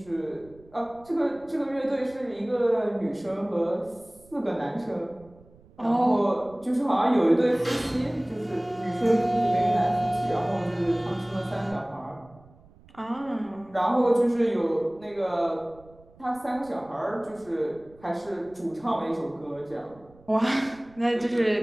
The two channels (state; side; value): noise; right; rumble, 26 dB below the sound